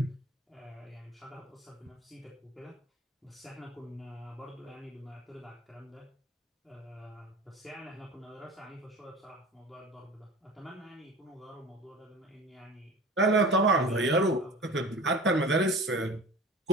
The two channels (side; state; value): both; normal; correlation 0.38